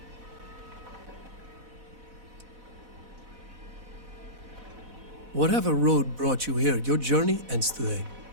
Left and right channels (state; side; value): late; left; 4.0 ms